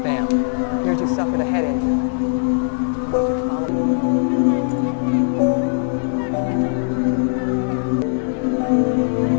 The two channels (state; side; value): silent; right; 66 dB below the other